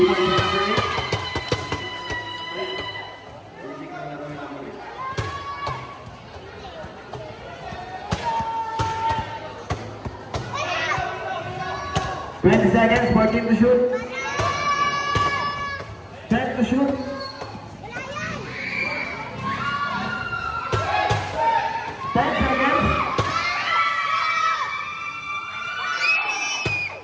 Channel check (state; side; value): identical; both; correlation 1.00